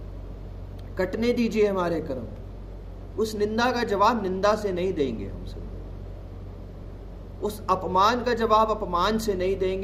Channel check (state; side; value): identical; both; correlation 1.00